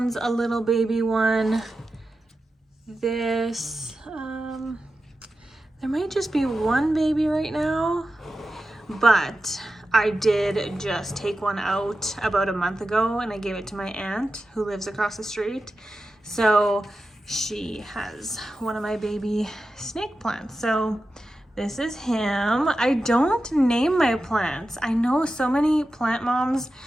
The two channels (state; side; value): normal; both; correlation 0.92